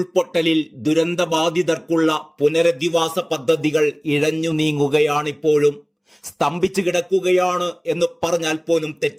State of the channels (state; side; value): identical; both; correlation 1.00